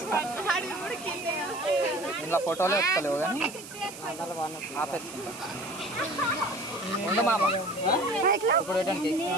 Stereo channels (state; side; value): noise; right; hiss, 14 dB below the sound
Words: ఇలా ఫోటోలు వస్తలేవు కానీ ఆపేస్తుంటా. ఉండు మామ ఇప్పుడు